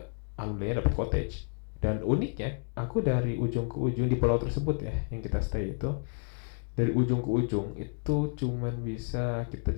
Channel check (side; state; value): right; silent; 55 dB below the other